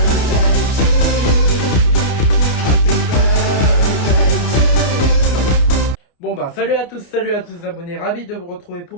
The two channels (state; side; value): late; right; 29 ms